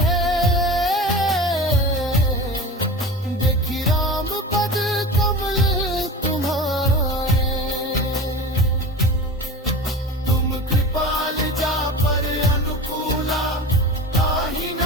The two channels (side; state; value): both; normal; correlation 0.32